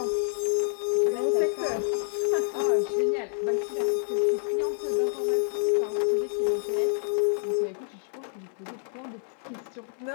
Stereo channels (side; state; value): right; silent; 60 dB below the other